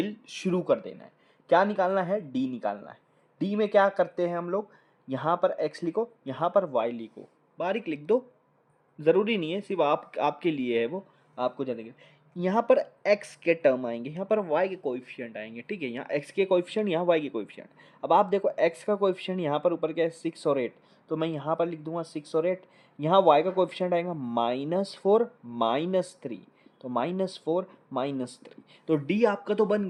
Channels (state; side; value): identical; both; correlation 1.00